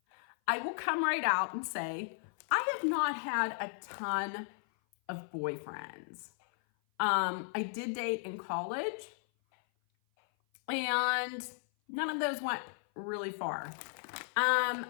I will come right out and say, I have not had a ton of boyfriends. I did date in college, and none of those went really far. I'm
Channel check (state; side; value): silent; right; 54 dB below the other